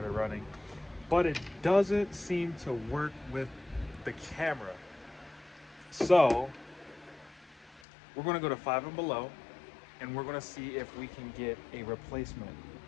it running, but it doesn't seem to work with the camera. So we're gonna go to Five and Below and we're gonna see if we can get a replacement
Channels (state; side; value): drops out; right; at 7.8 s